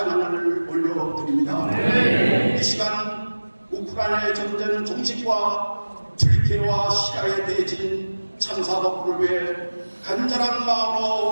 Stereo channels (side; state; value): both; inverted; correlation -1.00